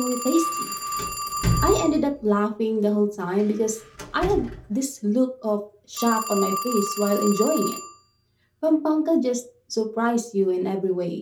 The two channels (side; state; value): both; identical; correlation 1.00